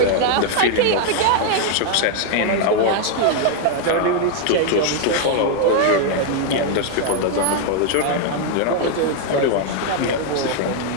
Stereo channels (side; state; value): both; different; correlation 0.00